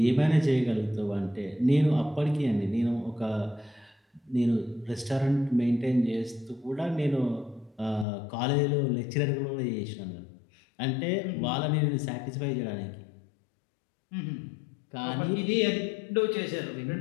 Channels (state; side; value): drops out; right; at 8.1 s